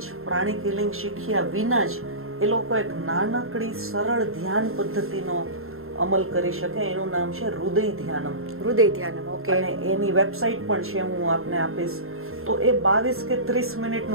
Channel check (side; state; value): left; late; 0.61 ms